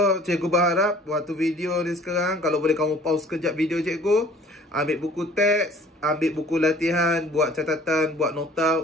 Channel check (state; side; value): normal; both; correlation 0.51